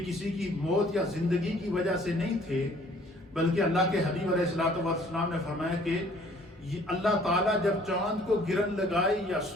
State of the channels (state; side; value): normal; both; correlation 0.57